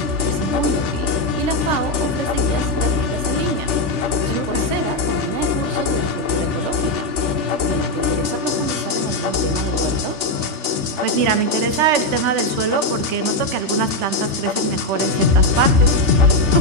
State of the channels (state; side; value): late; left; 3.4 ms